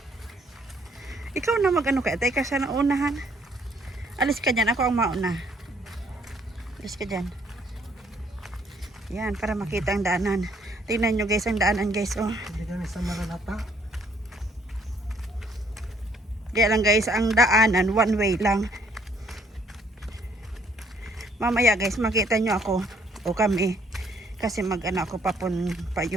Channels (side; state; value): both; normal; correlation 0.65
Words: Ikaw na mag-ano kaya? Tayo ka sa unahan. Alis ka dyan. Ako ang mauna. Alis ka dyan. Yan, para makita ang daanan. Tingnan nyo guys ang daanan guys. Oh. Hindi kami sa Nalalata. Kaya lang guys, ang daanan, one way lang. Mamaya guys, makita nyo ako o kami. Kasi mag-ano ako pa